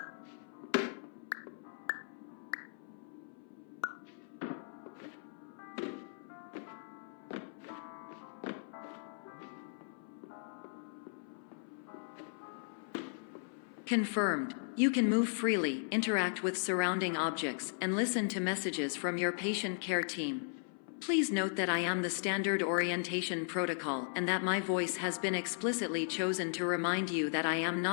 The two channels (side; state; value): right; silent; 53 dB below the other